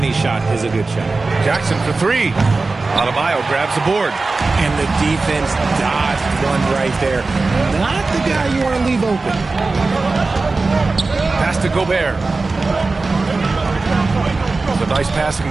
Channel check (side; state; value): left; quieter; 3.7 dB